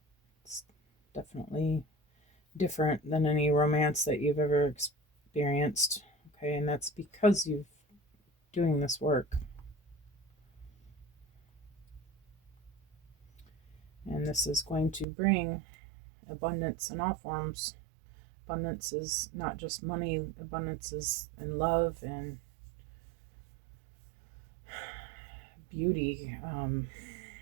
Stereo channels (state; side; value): drops out; left; at 15.1 s